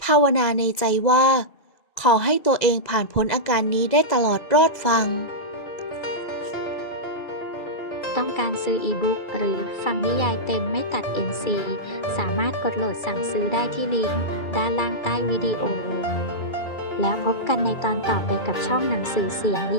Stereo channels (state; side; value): late; right; 2.3 ms